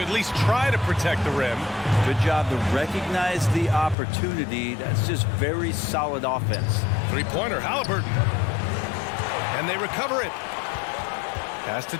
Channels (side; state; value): right; drops out; at 4.0 s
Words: at least try to protect the rim. Good job to recognize the opportunity. That's just very solid offense. Three-pointer, Halliburton. And they recover it. Pass to